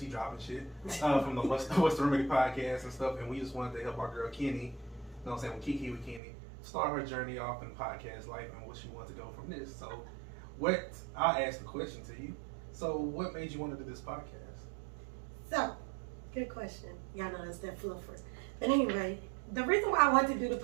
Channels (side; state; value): left; drops out; at 6.2 s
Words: dropping shit, from the What's the Remedy podcast and stuff, and we just wanted to help our girl Kenny, you know what I'm saying, with Kiki with Kenny, start her journey off in podcast life and what she wants to go from this. So, I'll ask the question to you. So, what made you want to do this podcast? So, good question. Y'all know that's that fluffer. But anyway, the reason why I wanted to do the